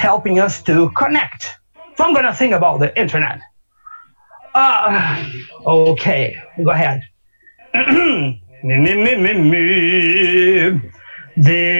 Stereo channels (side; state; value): both; inverted; correlation -1.00